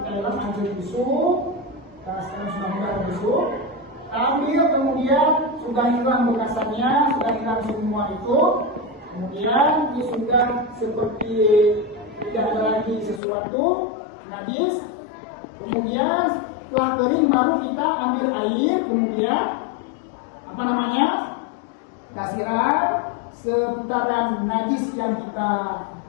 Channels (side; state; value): right; drops out; at 13.2 s